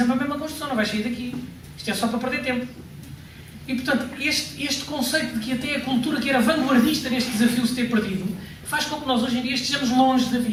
a mesma construção, não vais sair daqui. Isto é só para perder tempo. E portanto, este conceito de que até a cultura que era vanguardista neste desafio se ter perdido, faz com que nós hoje em dia estejamos longe da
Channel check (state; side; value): identical; both; correlation 1.00